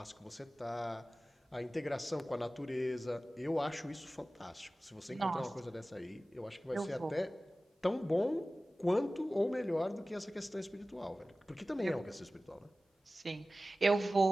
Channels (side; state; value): both; normal; correlation 0.96